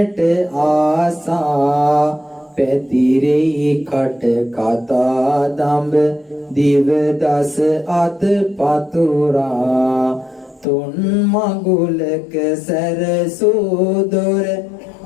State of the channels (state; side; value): drops out; right; at 10.7 s